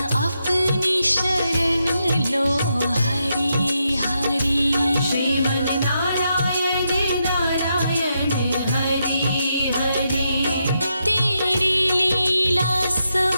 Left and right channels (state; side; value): inverted; both; correlation -0.83